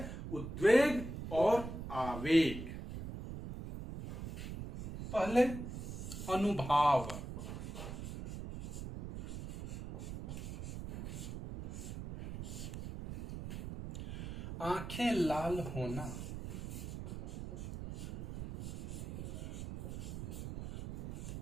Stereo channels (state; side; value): noise; right; rumble, 7 dB below the sound